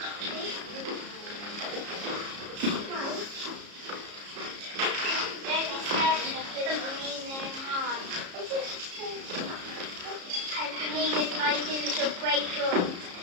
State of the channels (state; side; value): late; left; 33 ms